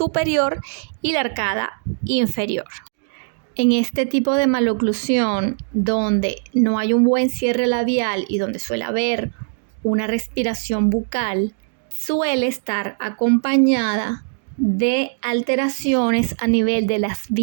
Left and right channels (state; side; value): silent; left; digital silence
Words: y la arcada inferior. En este tipo de maloclusión, donde no hay un buen cierre labial y donde suele haber una respiración bucal, suele estar acompañada de alteraciones a nivel de las